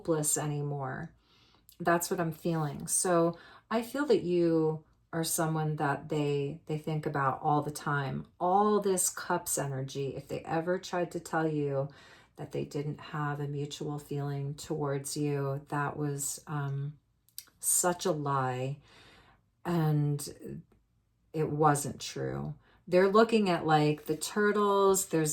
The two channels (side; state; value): both; identical; correlation 1.00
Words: anymore. That's what I'm feeling. So I feel that you are someone that they think about all the time. All this cups energy, if they ever tried to tell you that they didn't have a mutual feeling towards you, that was such a lie. And it wasn't true. They're looking at like the turtles. There's